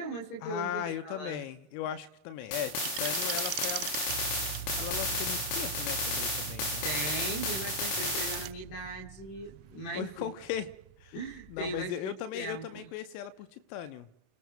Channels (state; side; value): late; right; 26 ms